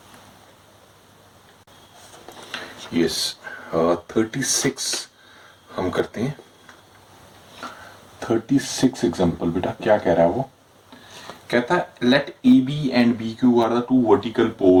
यस 36 हम करते हैं, 36 एग्जाम्पल बेटा। क्या कह रहा है वो, कहता है let A B and B Q are the two vertical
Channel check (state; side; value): identical; both; correlation 1.00